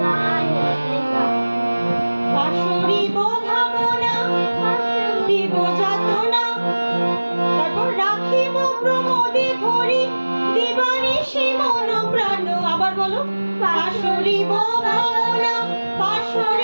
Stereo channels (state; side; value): inverted; both; correlation -1.00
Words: গাইবে গান পাশরিব ভাবনা, দিব যাতনা, তারপর রাখিব প্রমোদে ভরি দিবানিশি মন প্রাণ, আবার বলো। পাশরিব ভাবনা,